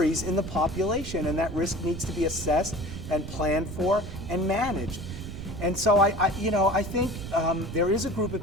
in the population, and that risk needs to be assessed and planned for and managed. And so I think there is a group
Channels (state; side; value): noise; right; rumble, 9 dB below the sound